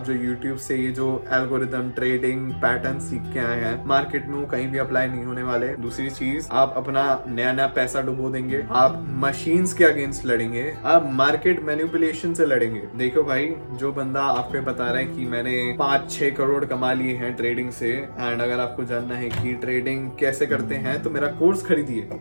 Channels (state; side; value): inverted; both; correlation -1.00